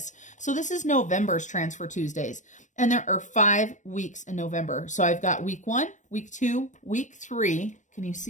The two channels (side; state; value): right; late; 0.35 ms